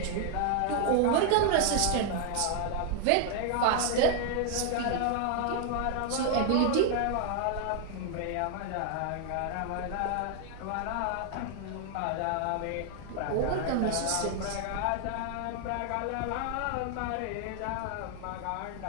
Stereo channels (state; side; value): different; both; correlation 0.00